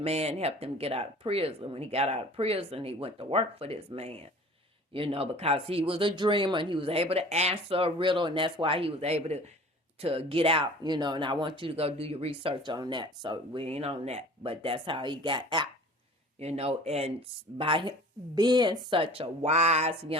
man helped him get out of prison. When he got out of prison, he went to work for this man, because he was a dreamer, and he was able to answer a riddle, and that's why he was able to get out, and I want you to go do your research on that. So we ain't on that, but that's how he got out, and by him being such a wise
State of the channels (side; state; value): both; normal; correlation 0.44